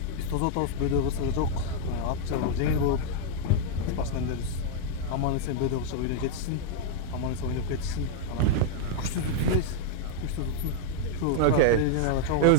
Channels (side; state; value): both; different; correlation 0.00